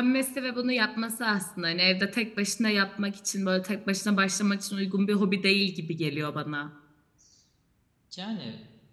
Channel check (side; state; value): both; identical; correlation 1.00